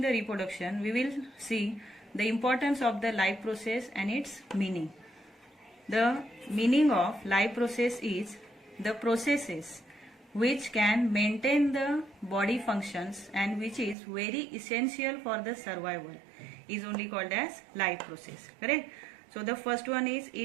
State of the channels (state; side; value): drops out; left; at 14.0 s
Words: the reproduction we will see the importance of the life process and its meaning. The meaning of life process is the processes which can maintain the body functions and which is very essential for the survival is only called as life process. Correct? So the first one is